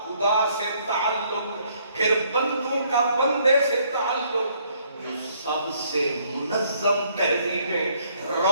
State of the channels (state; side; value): inverted; both; correlation -0.67